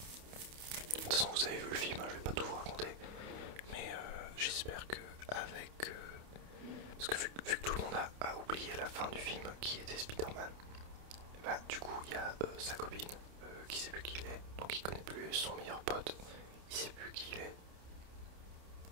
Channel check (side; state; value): left; late; 28 ms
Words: de toute façon, vous avez vu le film, hein, je vais pas tout vous raconter. Mais j'espère que avec... parce que vu que tout le monde a oublié la fin du film qui était Spider-Man, bah, du coup il y a sa copine qui sait plus qui il est, donc il connaît plus son meilleur pote, il sait plus qui il est.